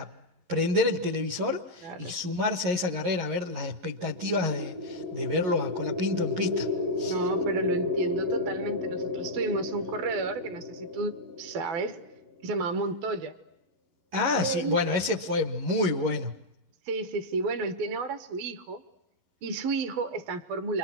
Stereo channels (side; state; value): left; late; 11 ms